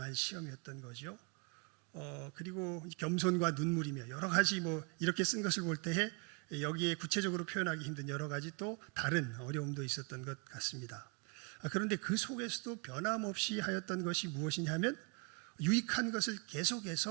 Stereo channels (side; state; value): left; quieter; 34.3 dB